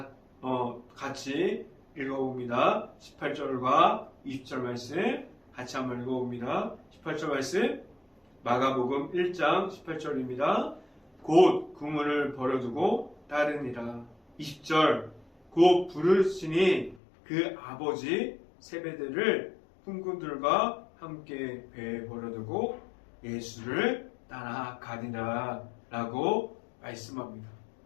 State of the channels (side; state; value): right; drops out; at 17.0 s